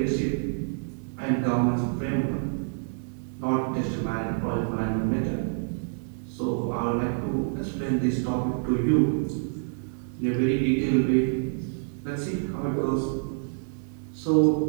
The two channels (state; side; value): silent; left; digital silence